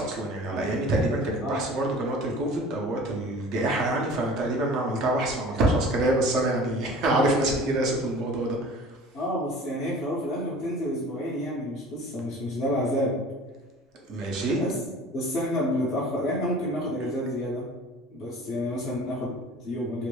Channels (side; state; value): both; normal; correlation 0.44